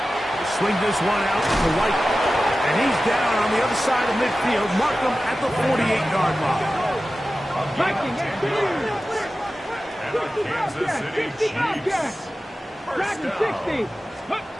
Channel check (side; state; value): both; normal; correlation 0.95